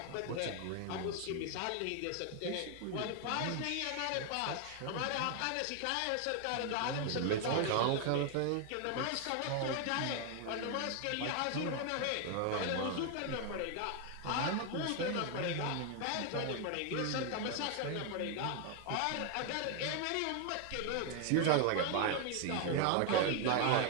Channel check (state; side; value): different; both; correlation 0.01